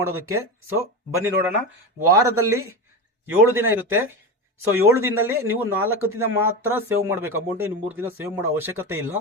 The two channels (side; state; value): both; normal; correlation 0.20